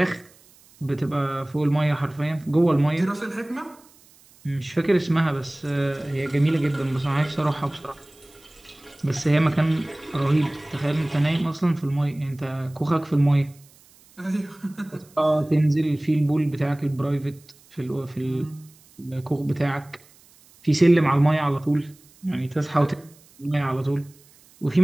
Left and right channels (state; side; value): noise; right; hiss, 28 dB below the sound